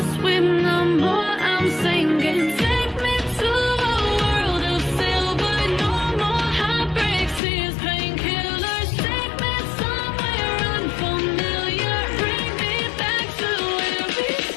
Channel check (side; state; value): right; drops out; at 7.4 s